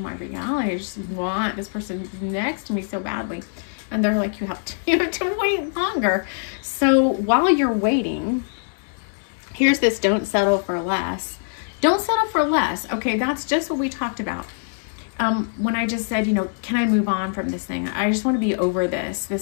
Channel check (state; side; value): silent; right; 63 dB below the other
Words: my reality? I just want this person next to me so badly. And they're like, you have to wait longer. So while you're waiting, here's this: don't settle for less. Don't settle for less. Okay, that's just what we talked about. When I just said, you know, can I move on from this thing? I just want to be over